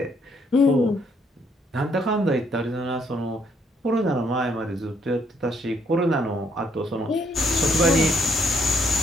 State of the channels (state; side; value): normal; both; correlation 0.69